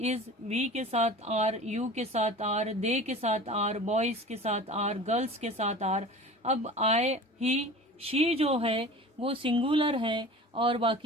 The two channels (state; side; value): normal; both; correlation 0.39